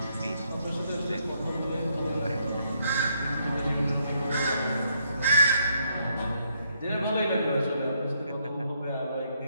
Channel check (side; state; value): both; inverted; correlation -0.73